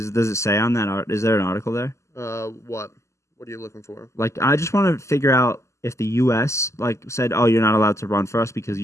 it say on that? Is there an article there? What? What are you looking for? Like, I just want to figure out if the U.S. said, "Oh, you're not allowed to run for us because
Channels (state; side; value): late; right; 0.14 ms